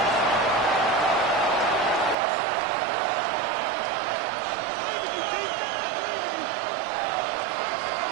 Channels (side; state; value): left; drops out; at 2.1 s